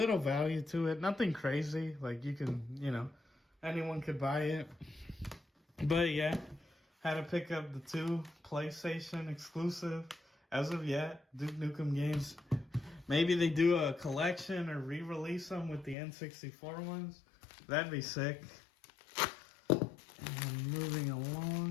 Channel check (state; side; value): drops out; right; at 16.0 s